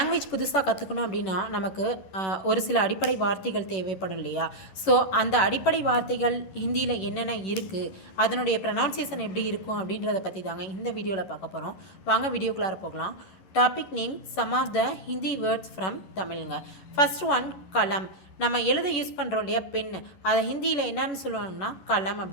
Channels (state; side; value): late; right; 11 ms